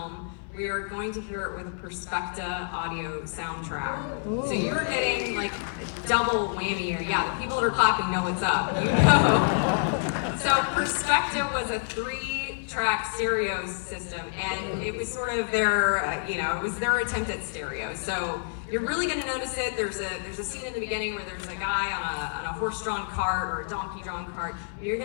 we are going to hear it with a Perspecta audio soundtrack. So you're getting like a double whammy here. Yeah, the people that are clapping know what's up. You know. So Perspecta was a 3-track stereo system, and it was sort of their, it was their attempt at stereo. So you're really going to notice it. There's a scene in the beginning where there's a guy on a horse-drawn cart or a donkey-drawn cart. You're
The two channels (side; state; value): right; silent; 56 dB below the other